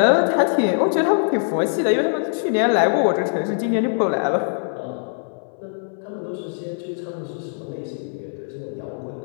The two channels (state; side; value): silent; right; 61 dB below the other